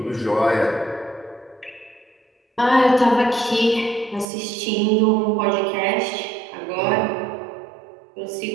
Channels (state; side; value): drops out; left; at 4.2 s